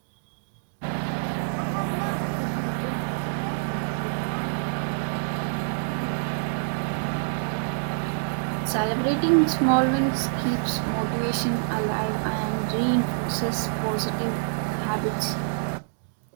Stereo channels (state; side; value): silent; left; digital silence